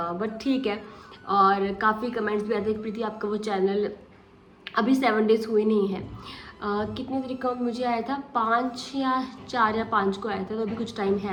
ठीक है। और काफ़ी कमेंट्स भी आते हैं प्रीति आपका वो चैनल अभी 7 डेज़ हुए नहीं है। कितने तरीके का मुझे आया था, 5 या 4 या 5 को आया था, तो अभी कुछ टाइम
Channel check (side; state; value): both; identical; correlation 1.00